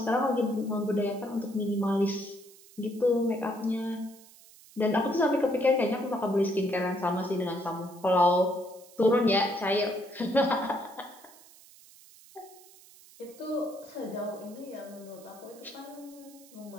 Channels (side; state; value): right; noise; hiss, 23 dB below the sound